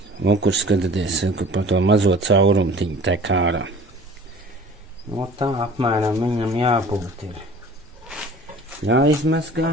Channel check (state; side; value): normal; both; correlation 0.46